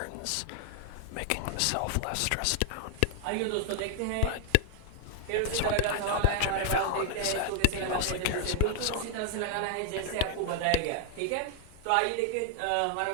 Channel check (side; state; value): both; different; correlation 0.00